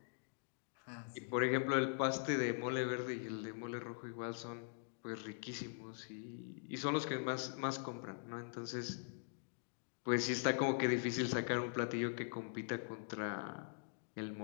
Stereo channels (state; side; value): silent; right; digital silence